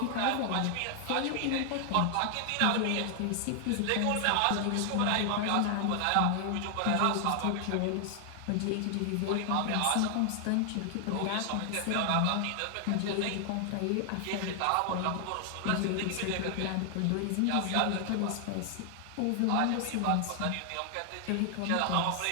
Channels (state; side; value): different; both; correlation 0.00